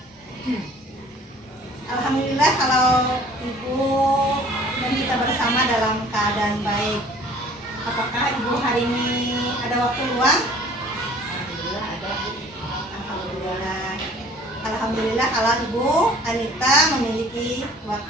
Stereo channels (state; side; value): normal; both; correlation 0.51